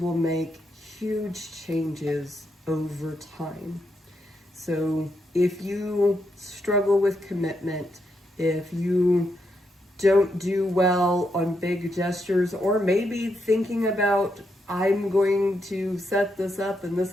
make huge changes over time. So if you struggle with commitment, if you don't do well on big gestures, or maybe thinking about, I'm going to set this up and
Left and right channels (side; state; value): both; normal; correlation 0.81